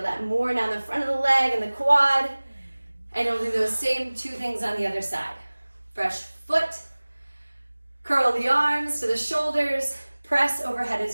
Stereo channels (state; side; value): inverted; both; correlation -1.00